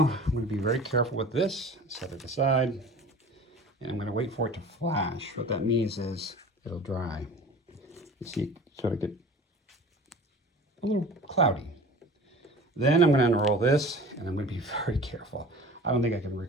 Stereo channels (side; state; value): both; normal; correlation 0.41